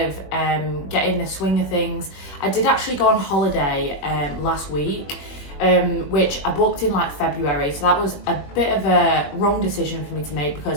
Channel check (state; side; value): late; right; 21 ms